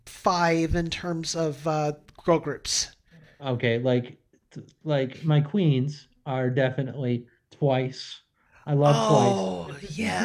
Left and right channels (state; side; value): identical; both; correlation 1.00